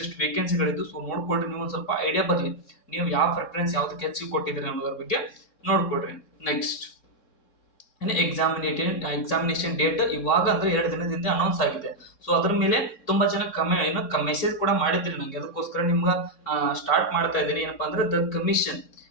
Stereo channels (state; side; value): late; right; 3.7 ms